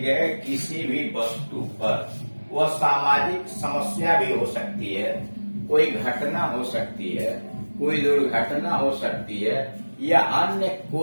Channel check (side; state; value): both; inverted; correlation -1.00